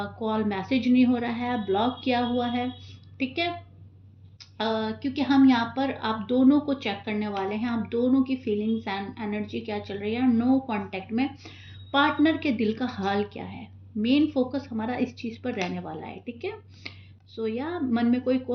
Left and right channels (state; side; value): identical; both; correlation 1.00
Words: कॉल मैसेज नहीं हो रहा है, ब्लॉक किया हुआ है, ठीक है। क्योंकि हम यहाँ पर आप दोनों को चेक करने वाले हैं, आप दोनों की फीलिंग्स एंड एनर्जी क्या चल रही है। नो कांटेक्ट में पार्टनर के दिल का हाल क्या है, मेन फोकस हमारा इस चीज़ पर रहने वाला है, ठीक है। सो या मन में कोई